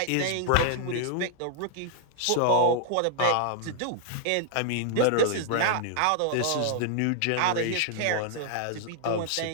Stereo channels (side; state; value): both; different; correlation -0.01